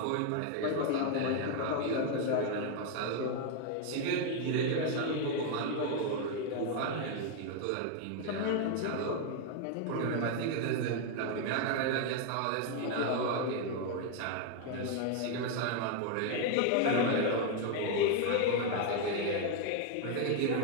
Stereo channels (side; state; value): both; different; correlation 0.01